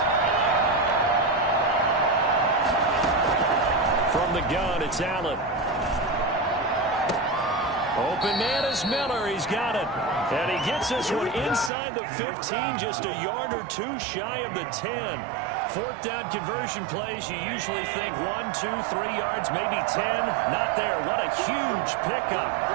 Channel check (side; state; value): left; drops out; at 11.7 s